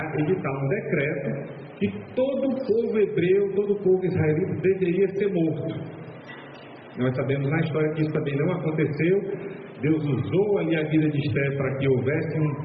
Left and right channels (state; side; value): identical; both; correlation 1.00